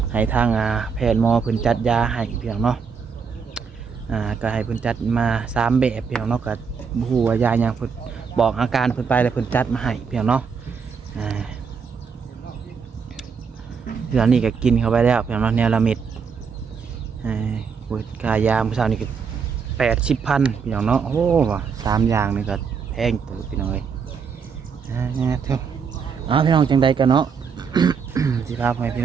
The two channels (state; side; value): quieter; left; 6.0 dB